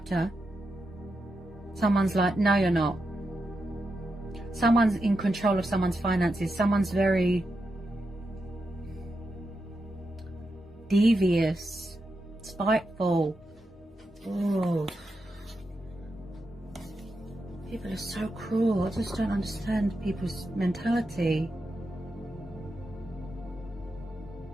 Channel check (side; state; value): both; normal; correlation 0.87